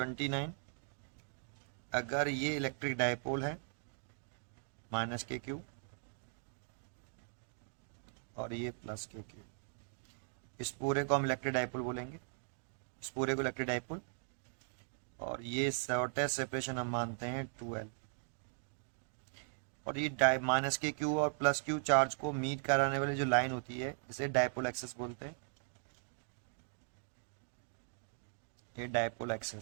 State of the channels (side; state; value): left; silent; digital silence